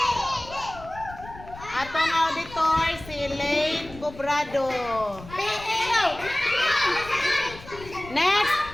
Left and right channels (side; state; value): left; noise; rumble, 17 dB below the sound